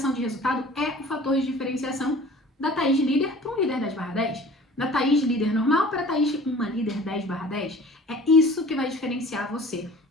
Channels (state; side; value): normal; both; correlation 0.45